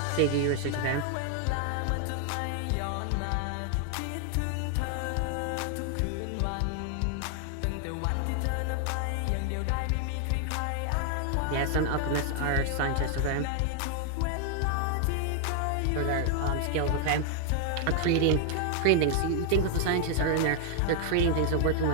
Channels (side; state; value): both; different; correlation 0.00